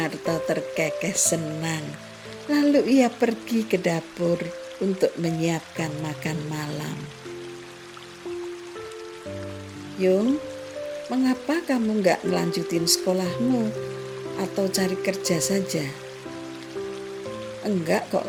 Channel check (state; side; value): identical; both; correlation 1.00